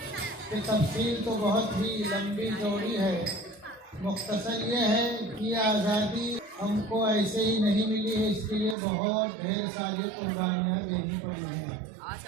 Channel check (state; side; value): drops out; left; at 8.8 s